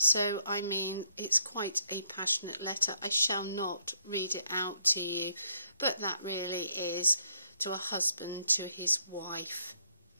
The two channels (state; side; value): inverted; both; correlation -0.71